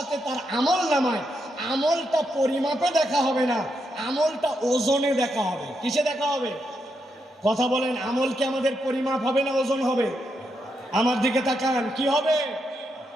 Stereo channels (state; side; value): normal; both; correlation 0.82